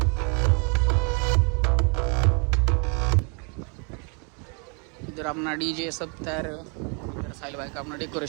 इधर अपना डीजे सब तैयार है. इधर साहिल भाई का अपना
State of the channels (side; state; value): left; quieter; 35.8 dB